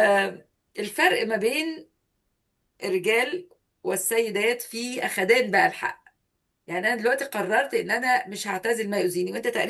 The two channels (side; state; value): both; identical; correlation 1.00